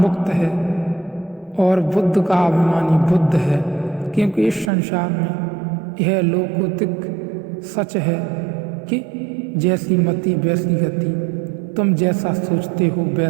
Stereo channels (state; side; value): drops out; left; at 4.7 s